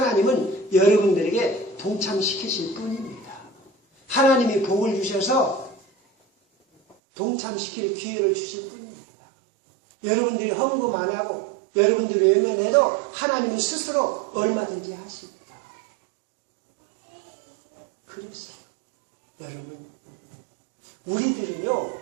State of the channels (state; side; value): drops out; left; at 7.0 s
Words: 여러분들에게 동참시키실 뿐입니다. 하나님이 복을 주셔서 동참시킬 기회를 주실 뿐입니다. 여러분들이 헌금 안 하고 여러분들이 외면해도 하나님은 스스로 얼마든지 하십니다. 그랬어요. 여러분, 우리들은요,